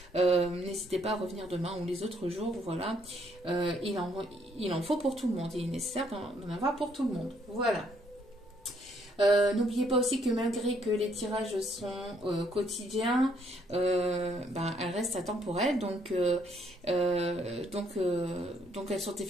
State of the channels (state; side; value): normal; both; correlation 0.69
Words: N'hésitez pas à revenir demain ou les autres jours. Voilà. Il en faut pour tout le monde. Il est nécessaire d'en avoir pour tout le monde. Voilà. N'oubliez pas aussi que malgré que les tirages sont quotidiens, elles restent atemporelles, donc elles sont